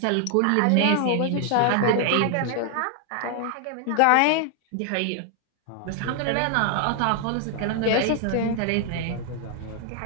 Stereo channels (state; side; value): different; both; correlation 0.00